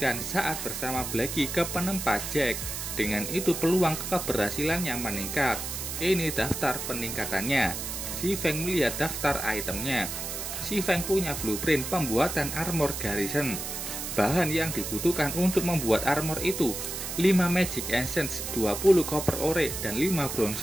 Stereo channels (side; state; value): right; noise; hiss, 5 dB below the sound